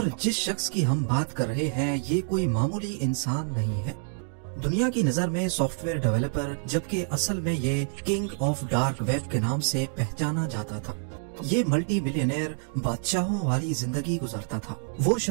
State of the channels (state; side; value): silent; left; digital silence